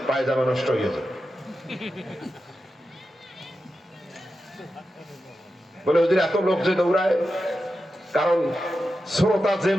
পায়জামা নষ্ট হয়ে যায় বলে ওদের এত লোক যে দৌড়ায়, কারণ শ্রোতা যে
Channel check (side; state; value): both; normal; correlation 0.90